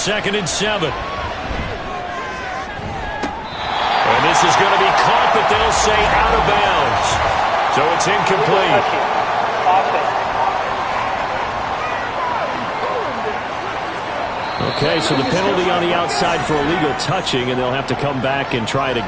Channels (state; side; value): identical; both; correlation 1.00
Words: and 7. And this is going to be caught, but they'll say out of bounds. So it's incomplete. Okay, so the penalty on the outside for illegal touching, and they'll have to come back and try it